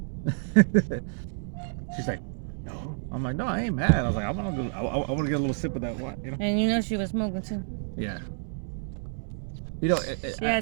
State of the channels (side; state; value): left; silent; digital silence